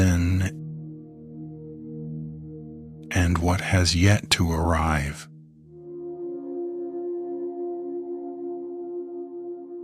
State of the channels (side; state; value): both; identical; correlation 1.00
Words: and what has yet to arrive.